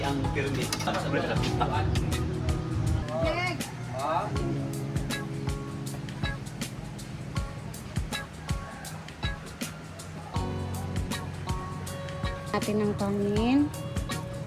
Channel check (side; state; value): both; identical; correlation 1.00